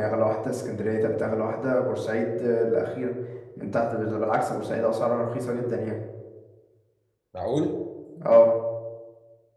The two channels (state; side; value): identical; both; correlation 1.00